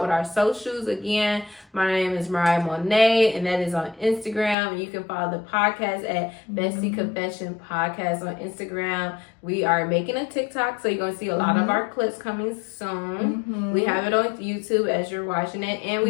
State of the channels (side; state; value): right; drops out; at 4.5 s